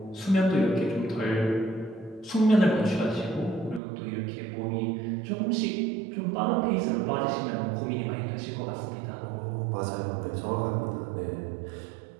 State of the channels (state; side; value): drops out; left; at 3.8 s